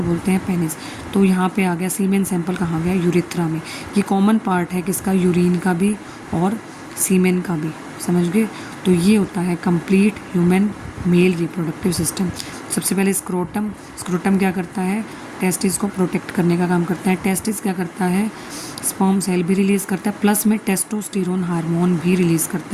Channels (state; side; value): identical; both; correlation 1.00